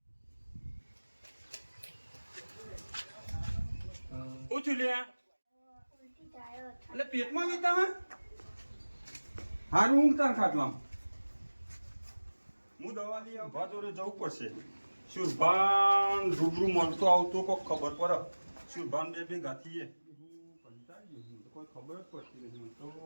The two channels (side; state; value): both; inverted; correlation -1.00